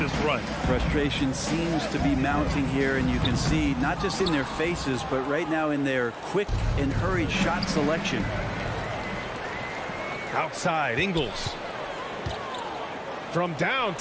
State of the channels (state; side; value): identical; both; correlation 1.00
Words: run. Frustration seems to be mounting here, and you can see not just in their faces, but right now in their quick and hurried shot selection. Outside, Ingles. From